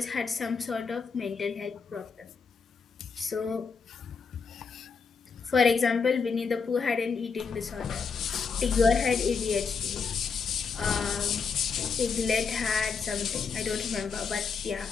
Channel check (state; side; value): quieter; right; 5.4 dB